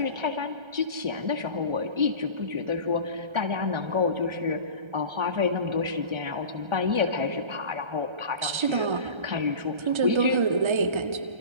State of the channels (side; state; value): left; late; 1.3 ms